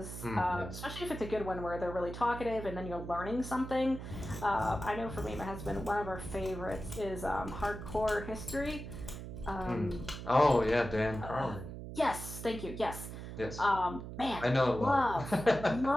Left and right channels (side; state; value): right; noise; hum, 9 dB below the sound